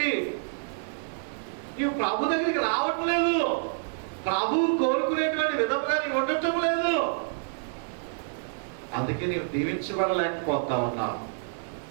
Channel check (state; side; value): silent; left; digital silence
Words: నీవు ప్రభు దగ్గరికి రావట్లేదు. ప్రభువు కోరుకునేటువంటి విధంగా నీవు ఉండటం లేదు. అందుకే నీవు దీవించబడలేకపోతా ఉన్నావు.